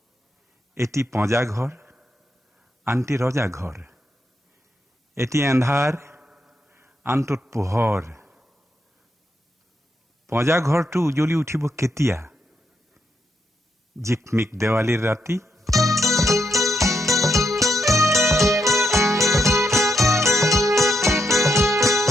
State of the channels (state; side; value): normal; both; correlation 0.80